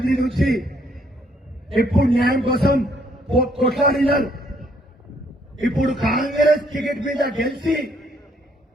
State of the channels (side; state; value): both; normal; correlation 0.68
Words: నుంచి ఎప్పుడు న్యాయం కోసం కొట్లాడినారు. ఇప్పుడు కాంగ్రెస్ టికెట్ మీద గెలిచి